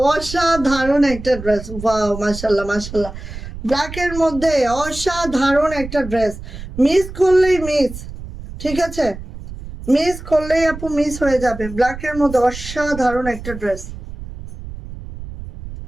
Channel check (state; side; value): noise; right; rumble, 11 dB below the sound